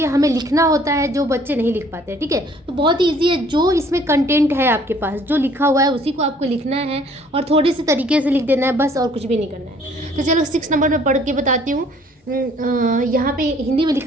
हमें लिखना होता है जो बच्चे नहीं लिख पाते हैं. ठीक है, तो बहुत ईजी है. जो इसमें कंटेंट है आपके पास, जो लिखा हुआ है उसी को आपको लिखना है और थोड़े से तरीके से लिख देना है बस, और कुछ भी नहीं करना है. तो चलो 6 नंबर में पढ़ के बताती हूँ. यहाँ पे हिंदी में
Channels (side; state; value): both; normal; correlation 0.58